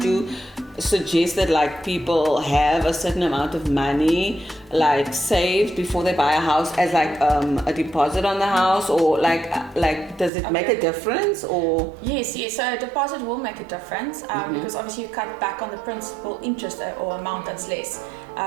you suggest that like people have a certain amount of money like saved before they buy a house as like a deposit on the house, or like does it make a difference? Or yes, so a deposit will make a difference, because obviously you cut back on the principal interest or amount that's less.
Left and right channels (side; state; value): left; drops out; at 10.3 s